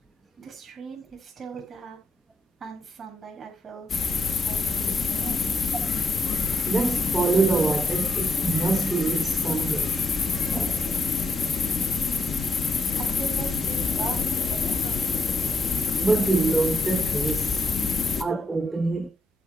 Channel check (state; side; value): normal; both; correlation 0.79